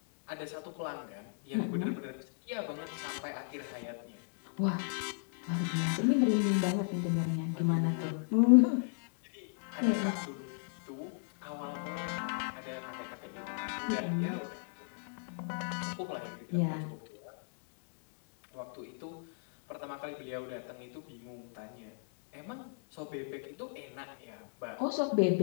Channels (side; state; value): right; silent; digital silence